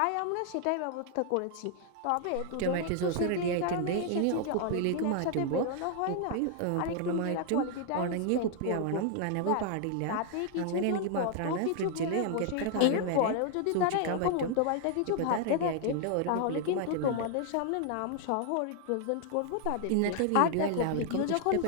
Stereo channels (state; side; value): different; both; correlation 0.00